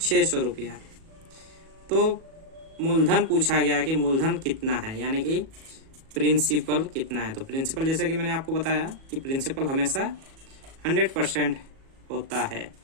रुपया। तो मूलधन पूछा गया कि मूलधन कितना है, यानी कि प्रिंसिपल कितना है। तो प्रिंसिपल जैसे कि मैंने आपको बताया कि प्रिंसिपल हमेशा 100% होता है।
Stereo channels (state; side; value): late; left; 37 ms